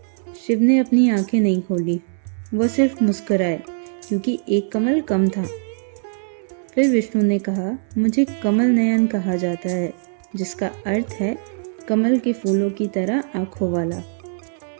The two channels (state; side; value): silent; left; 65 dB below the other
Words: शिव ने अपनी आंखें नहीं खोली, वह सिर्फ मुस्कुराए क्योंकि एक कमल कम था। फिर विष्णु ने कहा, मुझे कमल नयन कहा जाता है, जिसका अर्थ है कमल के फूलों की तरह आंखों वाला।